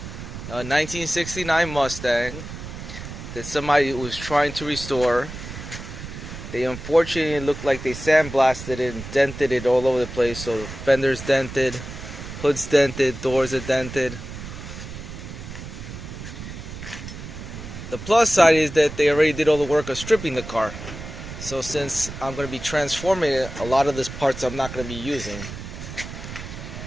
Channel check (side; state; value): right; noise; rumble, 10 dB below the sound